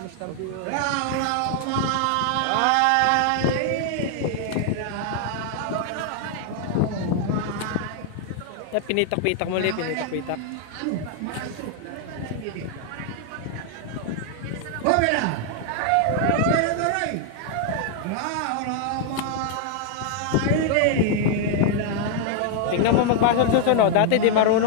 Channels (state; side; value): different; both; correlation 0.00